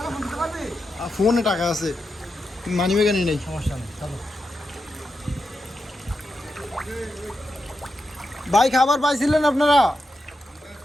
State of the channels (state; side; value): normal; both; correlation 0.87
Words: ফোন দিতে পারবি ফোনে টাকা আছে মানি ব্যাগে নেই সমস্যা নেই চলো ভাই খাবার পাইছিলেন আপনারা